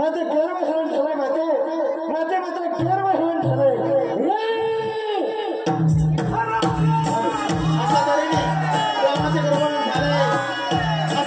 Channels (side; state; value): both; identical; correlation 1.00